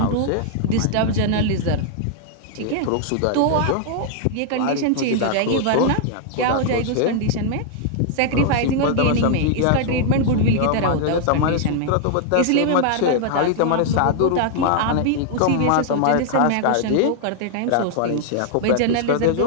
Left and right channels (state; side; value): different; both; correlation 0.00